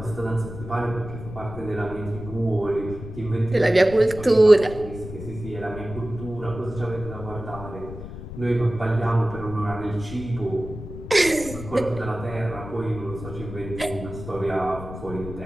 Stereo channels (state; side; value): noise; left; rumble, 11 dB below the sound